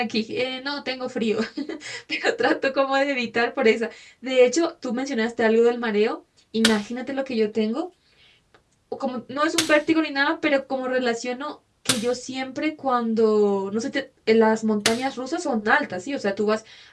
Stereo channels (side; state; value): both; identical; correlation 1.00